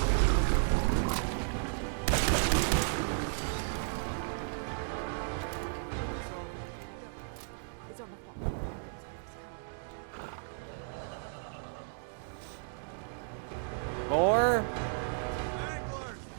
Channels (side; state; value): left; silent; digital silence